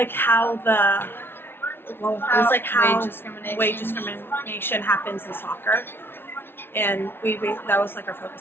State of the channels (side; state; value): right; late; 0.11 ms